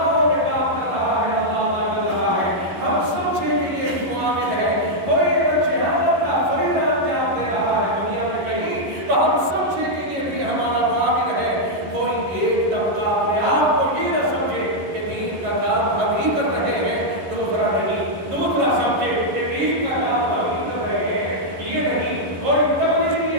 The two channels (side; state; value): left; late; 11 ms